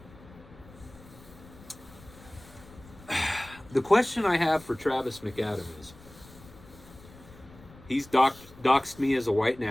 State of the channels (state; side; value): noise; left; rumble, 21 dB below the sound